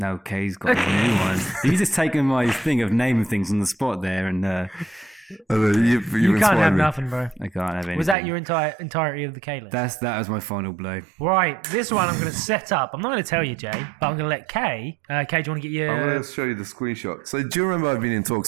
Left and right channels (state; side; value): drops out; left; at 8.2 s